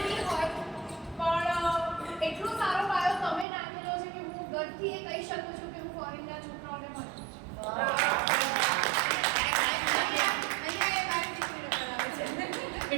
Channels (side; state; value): left; drops out; at 3.5 s